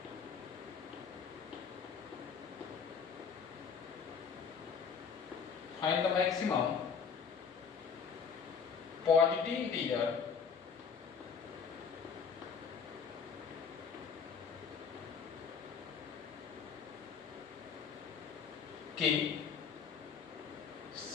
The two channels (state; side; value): quieter; right; 6.3 dB